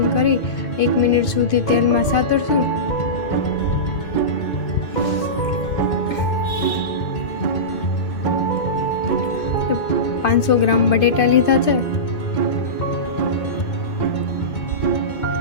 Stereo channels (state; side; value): late; right; 2.3 ms